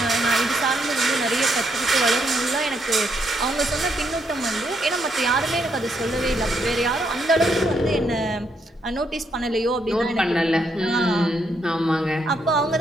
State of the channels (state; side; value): normal; both; correlation 0.76